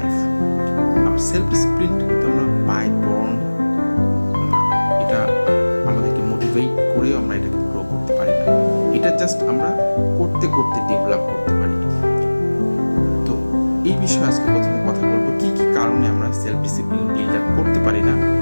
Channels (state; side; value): inverted; both; correlation -1.00